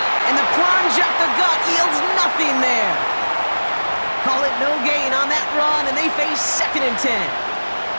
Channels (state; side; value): inverted; both; correlation -1.00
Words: And the plunge up the gut yields nothing there. Call it no gain on that run, and they face 2nd and 10.